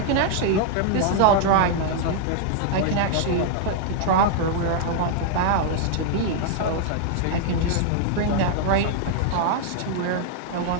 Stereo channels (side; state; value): both; different; correlation 0.00